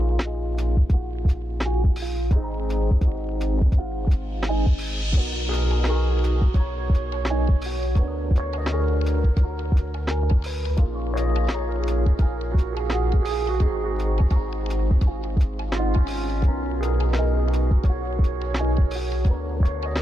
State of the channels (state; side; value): normal; both; correlation 0.88